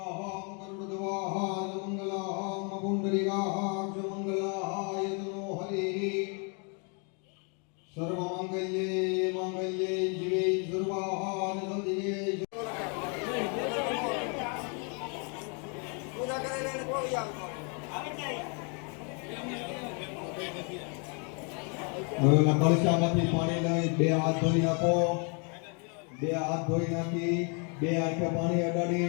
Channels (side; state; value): right; quieter; 36.9 dB